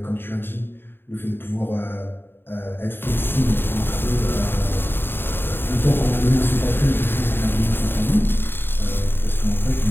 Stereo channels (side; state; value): right; late; 0.10 ms